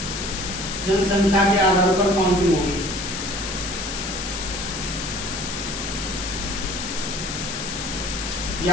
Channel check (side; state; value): left; noise; hiss, 5 dB below the sound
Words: जनसंख्या के आधार पर काउंटिंग होगी।